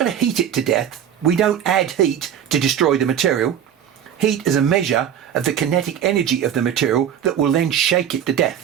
to heat it to death. We don't add heat to destroy the material. Heat is a measure of the kinetic energy of the material that will then shake it to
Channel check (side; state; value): left; quieter; 9.3 dB